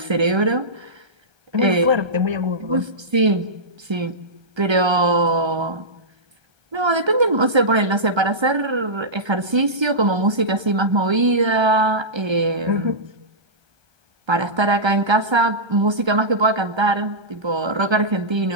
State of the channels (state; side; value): late; left; 1.3 ms